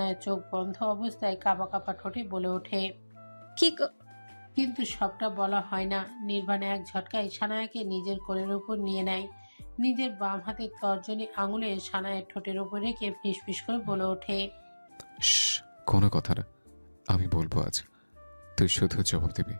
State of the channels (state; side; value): inverted; both; correlation -1.00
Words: চোখ বন্ধ অবস্থায় কাঁপা কাঁপা ঠোঁটে বলে ওঠে, কিন্তু সবটা বলা হয় না। নির্বাণ এক ঝটকায় সানায়াকে নিজের কোলের উপর নিয়ে নেয়। নিজের বাম হাতের তর্জনী আঙুলে সানায়ের ঠোঁটের উপর রেখে ফিসফিস করে বলে ওঠে, কোনো কথা না, আমি বলবো আজ, তুই শুধু জবাব দিবি।